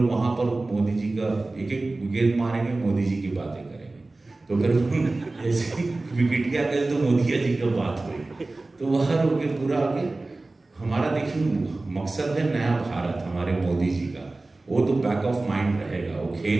वहां पर मोदी जी का एक एक गेंद मारेंगे, मोदी जी की बातें करेंगे, तो फिर जैसे विकेटिया गए तो मोदिया जी का बात हुई, तो वह रोके पूरा आगे हमारा देखिए मकसद है नया भारत हमारे मोदी जी का, वो तो बैक ऑफ माइंड रहेगा। वो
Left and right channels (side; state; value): left; quieter; 3.1 dB